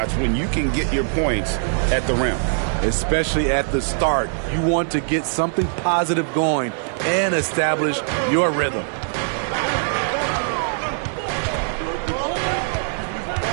when you can get your points at the rim? Especially at the start. You want to get something positive going and establish your rhythm.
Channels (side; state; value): left; silent; digital silence